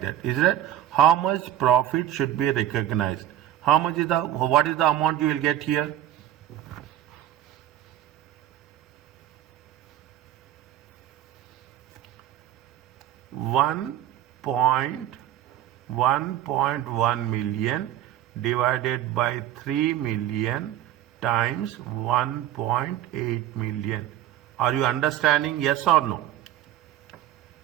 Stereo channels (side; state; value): left; quieter; 12.2 dB